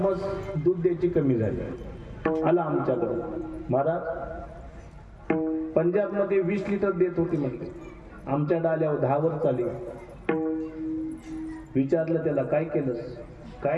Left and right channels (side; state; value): both; identical; correlation 1.00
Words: दूध द्यायची कमी झाली. आला आमच्याकडे, महाराज पंजाबमध्ये 20 लिटर देत होती म्हणजे, आमच्या डाल्यावर 10 वर चाली. विचारलं त्याला, काय केलंस?